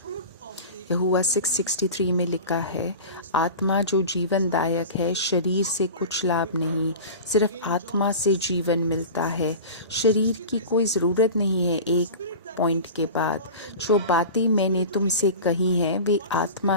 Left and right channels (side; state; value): both; inverted; correlation -0.33